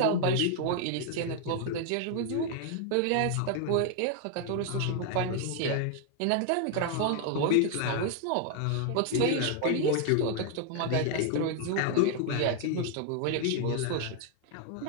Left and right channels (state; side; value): different; both; correlation 0.00